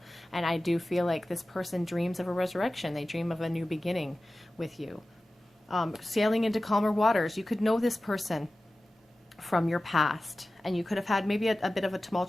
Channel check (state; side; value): normal; both; correlation 0.96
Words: And I do feel like this person dreams of a resurrection. They dream of a new beginning with you. Sailing into calmer waters. You could know this person from your past, and you could have had maybe a bit of a